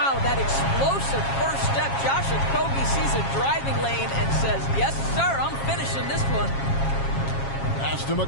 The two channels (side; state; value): right; late; 7.3 ms